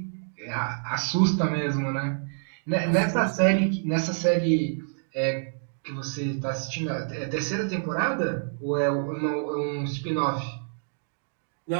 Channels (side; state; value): left; silent; digital silence